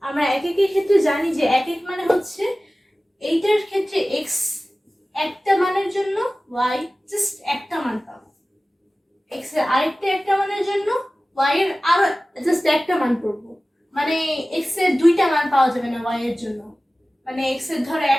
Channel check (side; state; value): both; normal; correlation 0.97